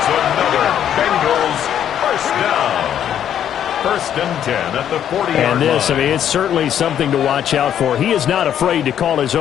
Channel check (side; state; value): right; quieter; 9.9 dB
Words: another Bengals first down. 1st and 10 at the 40-yard line. And this, I mean, it's certainly something to watch out for. He is not afraid to call his